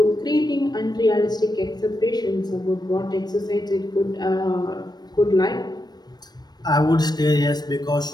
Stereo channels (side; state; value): right; late; 0.19 ms